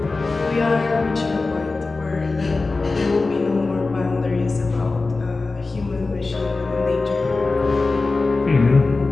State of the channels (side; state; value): right; quieter; 3.7 dB